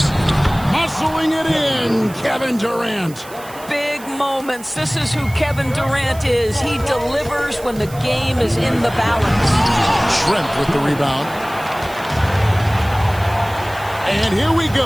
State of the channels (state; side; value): noise; right; hiss, 19 dB below the sound